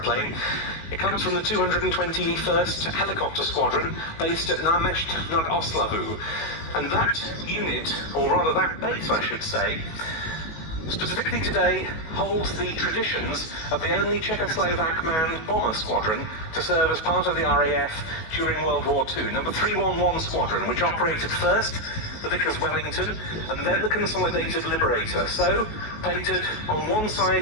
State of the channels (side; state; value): right; late; 19 ms